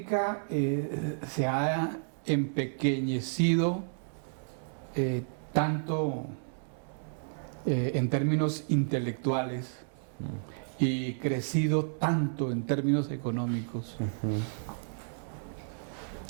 se ha empequeñecido tanto en términos intelectuales y crecido tanto en términos económicos,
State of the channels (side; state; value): left; silent; 57 dB below the other